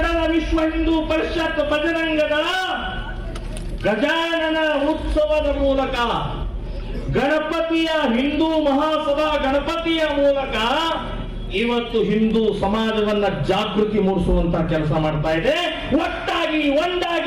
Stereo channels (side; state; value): both; identical; correlation 1.00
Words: ವಿಶ್ವ ಹಿಂದೂ ಪರಿಷತ್ ಬಜರಂಗ ದಳ ಗಜಾನನ ಉತ್ಸವದ ಮೂಲಕ, ಗಣಪತಿಯ ಹಿಂದೂ ಮಹಾಸಭಾ ಗಣಪತಿಯ ಮೂಲಕ ಇವತ್ತು ಹಿಂದೂ ಸಮಾಜವನ್ನ ಜಾಗೃತಿ ಮೂಡಿಸುವಂತ ಕೆಲಸ ಮಾಡ್ತಾ ಇದೆ. ಒಟ್ಟಾಗಿ,